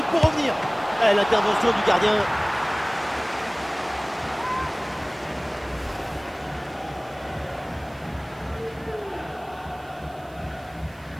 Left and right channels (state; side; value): noise; right; hiss, 28 dB below the sound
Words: pour revenir. Et l'intervention du gardien.